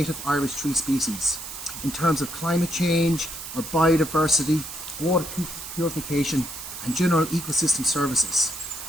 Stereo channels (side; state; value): right; noise; hiss, 10 dB below the sound